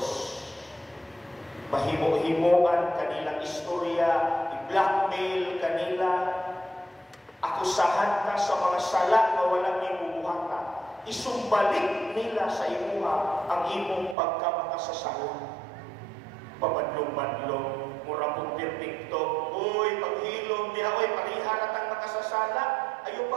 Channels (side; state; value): left; drops out; at 14.2 s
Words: Mahimo-himoan kanilang istorya, i-blackmail kanila, akusahan ka sa mga sala na walang ibubuhata, isumbalik nila sa imuha ang imong pagkamakasasala. Pabadlong-badlong, mura pong perfecto, uy, paghilom, diha, uy, pariharat ang makasasala, ayaw